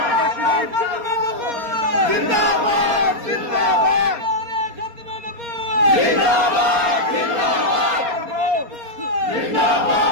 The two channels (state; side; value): late; left; 4.3 ms